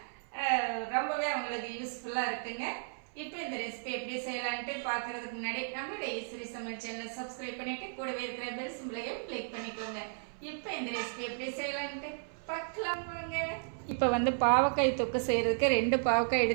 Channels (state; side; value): silent; left; 55 dB below the other